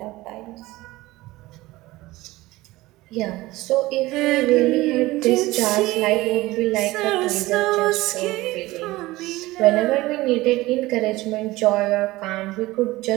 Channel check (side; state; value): left; quieter; 18.9 dB